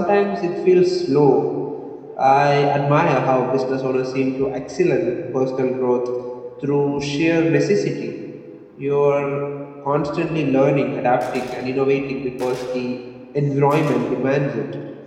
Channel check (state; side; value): identical; both; correlation 1.00